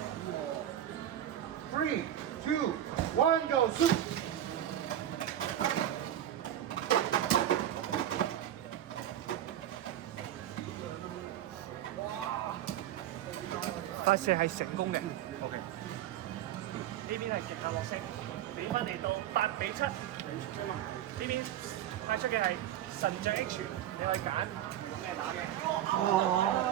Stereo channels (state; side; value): quieter; left; 11.5 dB